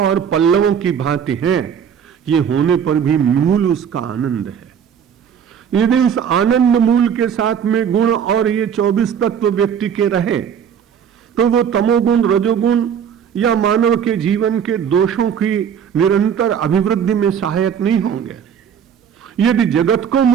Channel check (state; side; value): quieter; left; 8.0 dB